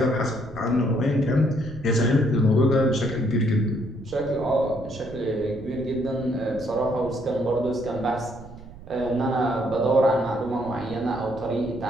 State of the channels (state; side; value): noise; right; rumble, 17 dB below the sound